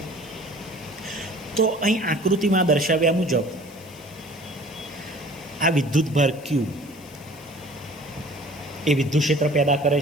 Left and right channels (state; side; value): noise; left; hiss, 23 dB below the sound